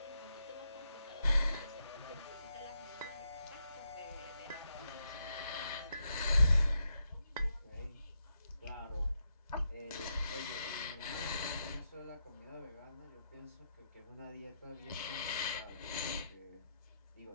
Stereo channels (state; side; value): inverted; both; correlation -0.82